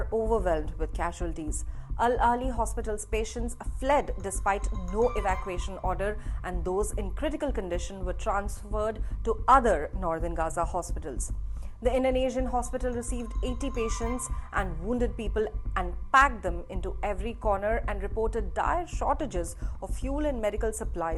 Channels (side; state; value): both; identical; correlation 1.00